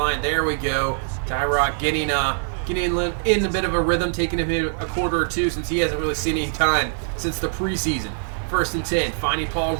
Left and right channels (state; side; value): silent; left; 64 dB below the other